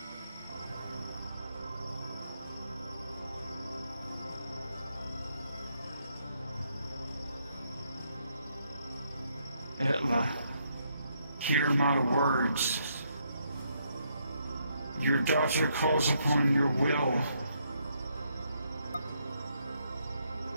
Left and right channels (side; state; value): both; inverted; correlation -0.74